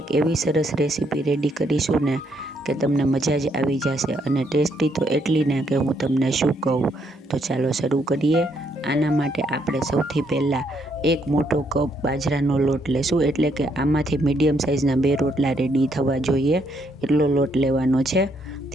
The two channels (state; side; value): normal; both; correlation 0.73